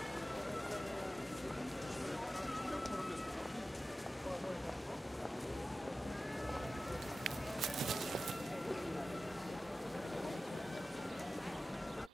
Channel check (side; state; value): both; normal; correlation 0.95